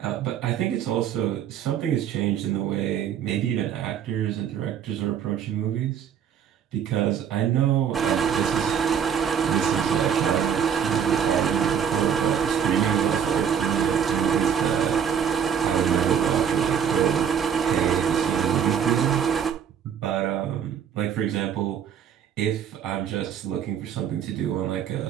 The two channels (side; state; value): left; quieter; 8.2 dB